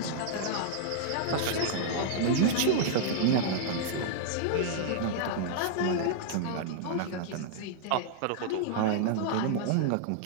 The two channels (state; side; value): different; both; correlation -0.01